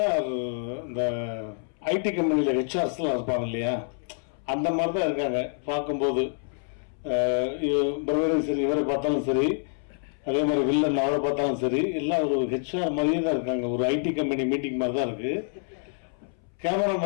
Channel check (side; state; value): right; silent; 60 dB below the other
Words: இந்த ஐடி கம்பெனியில் ஹெச்ஆர்ஸ்லாம் இருப்பாங்க இல்லையா, அந்த மாதிரி தான் இருக்காங்க பார்க்கும்போது. பிரதரும் சரி, இவரை பார்த்தாலும் சரி, அதே மாதிரி வில்லன் அவரை பார்த்தாலும் சரி, எல்லாம் ஒரு ஹெச்ஆர் மாதிரியே தான் இருக்காங்க. ஒரு ஐடி கம்பெனி மீட்டிங் மாதிரி தான் இருக்கு.